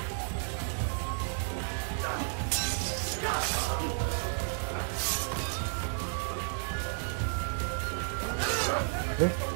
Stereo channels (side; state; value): left; silent; 56 dB below the other